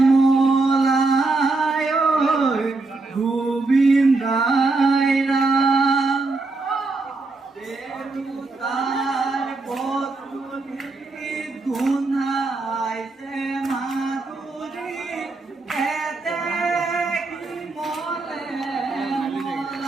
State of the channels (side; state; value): left; quieter; 3.5 dB